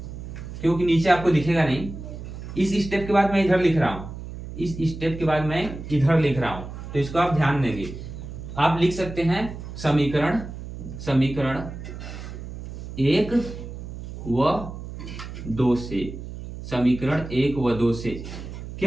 क्योंकि नीचे आपको दिखेगा नहीं। इस स्टेप के बाद मैं इधर लिख रहा हूं, इस स्टेप के बाद मैं इधर लिख रहा हूं, तो इसको आप ध्यान देंगे। आप लिख सकते हैं समीकरण 1 व 2 से, समीकरण 1 व 2 से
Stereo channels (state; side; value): noise; right; hum, 10 dB below the sound